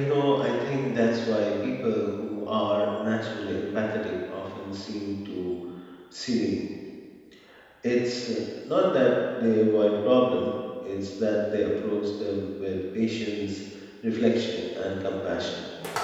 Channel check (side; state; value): both; identical; correlation 1.00